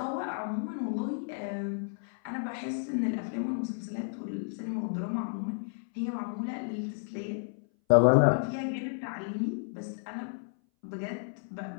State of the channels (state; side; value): silent; right; 57 dB below the other